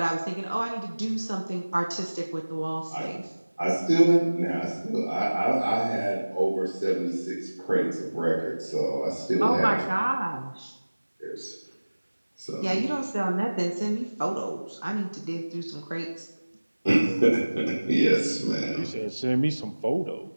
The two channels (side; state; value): both; inverted; correlation -1.00